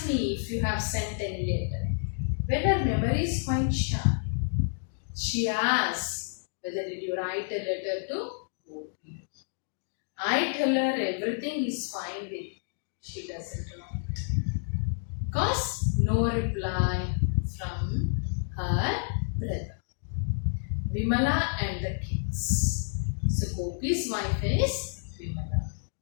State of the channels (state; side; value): silent; right; digital silence